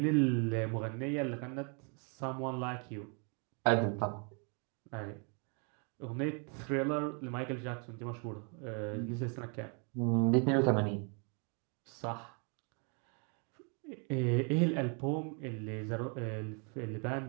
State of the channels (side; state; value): left; quieter; 37.2 dB